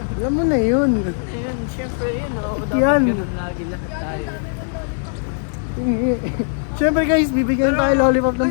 Alam mo na yun. Ayun, syempre yun, no? Yan. Dapat ganun lagi lahat tayo. Siyempre guys, bibigyan tayo lollipop ng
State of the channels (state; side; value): silent; right; digital silence